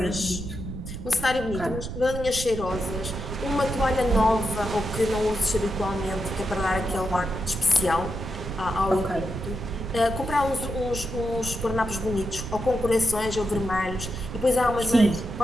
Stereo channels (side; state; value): right; noise; rumble, 8 dB below the sound